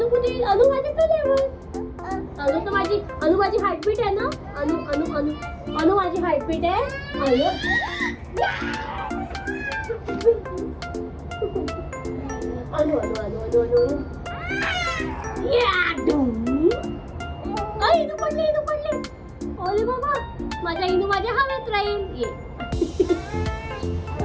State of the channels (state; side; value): identical; both; correlation 1.00